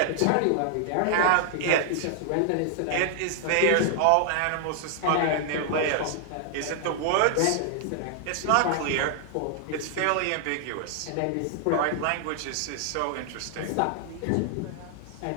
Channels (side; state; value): both; different; correlation 0.00